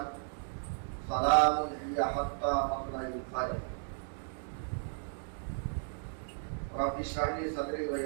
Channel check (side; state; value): left; silent; digital silence